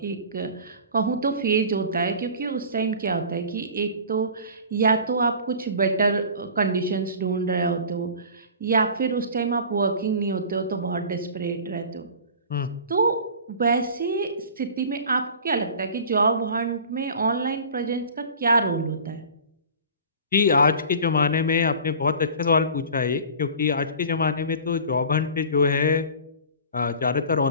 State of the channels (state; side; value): inverted; both; correlation -0.40